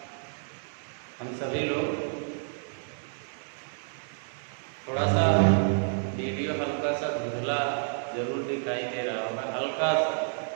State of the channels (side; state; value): left; silent; 58 dB below the other